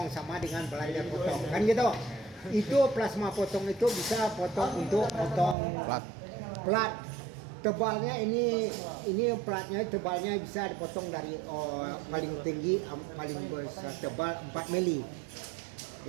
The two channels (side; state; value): left; drops out; at 5.6 s